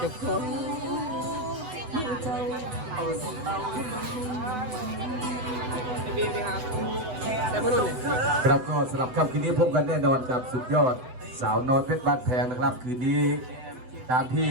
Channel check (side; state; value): left; late; 8.0 ms